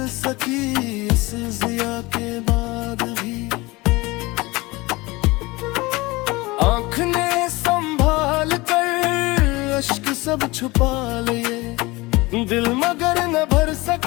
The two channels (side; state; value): right; quieter; 22.3 dB